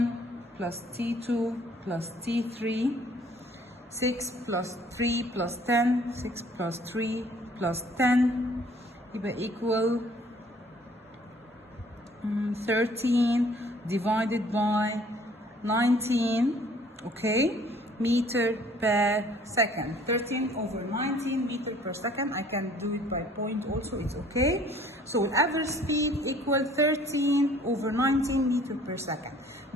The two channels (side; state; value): both; normal; correlation 0.56